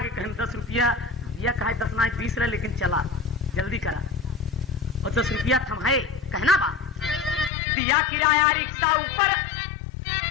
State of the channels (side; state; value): right; drops out; at 7.5 s